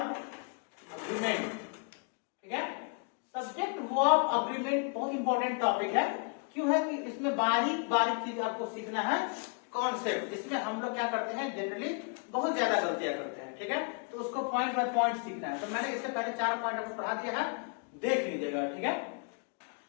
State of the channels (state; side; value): quieter; right; 38.9 dB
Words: अग्रीमेंट, ठीक है। सब्जेक्ट वर्ब अग्रीमेंट बहुत इंपॉर्टेंट टॉपिक है। क्यों है कि इसमें बारीक बारीक चीज आपको सीखना है, कॉन्सेप्ट जिसमें हम लोग क्या करते हैं जनरली बहुत ज्यादा गलतियां करते हैं, ठीक है। तो उसको पॉइंट बाय पॉइंट सीखना है। तो मैंने इससे पहले 4 पॉइंट आपको पढ़ा दिया है, देख लीजिएगा, ठीक है।